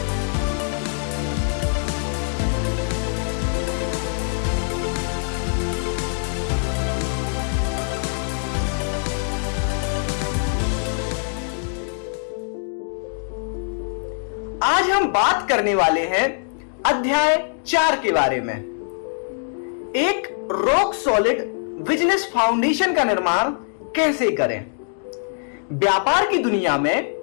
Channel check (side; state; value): right; silent; digital silence